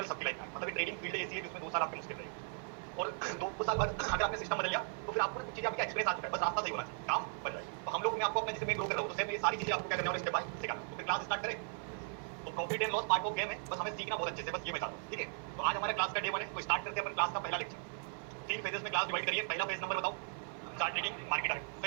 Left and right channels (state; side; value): silent; left; 53 dB below the other